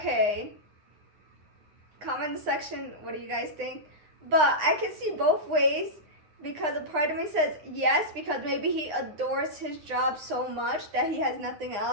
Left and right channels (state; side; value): late; left; 9.8 ms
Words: Comment in the section, what do you guys think? But I can see both ways because a part of me says yes, because maybe he adores his job so much that he has nothing